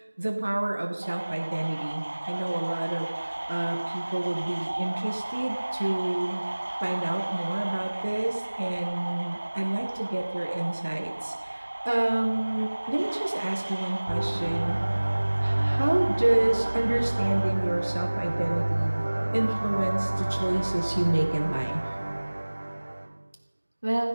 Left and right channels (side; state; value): both; inverted; correlation -1.00